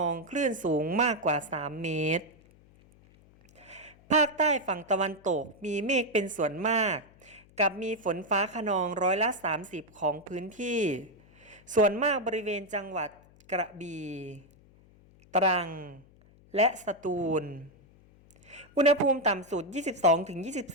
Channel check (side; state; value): left; noise; hum, 27 dB below the sound